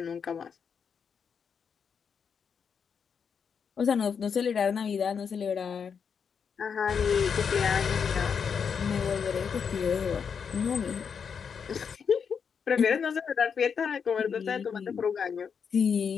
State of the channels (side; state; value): right; quieter; 6.6 dB